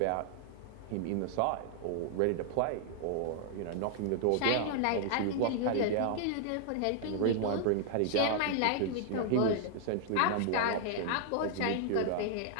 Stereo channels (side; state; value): both; different; correlation 0.00